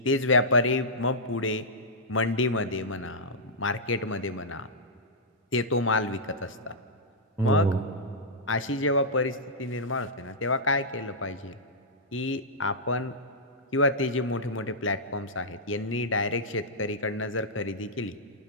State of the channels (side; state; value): both; normal; correlation -0.11